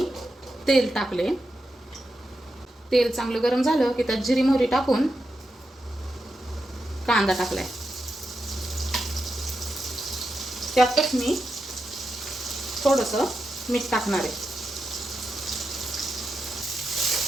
तेल टाकले। तेल चांगलं गरम झालं की त्यात जिरी मोहरी टाकून कांदा टाकलाय। त्यातच मी थोडंसं मीठ टाकणार आहे।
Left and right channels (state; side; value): normal; both; correlation 0.88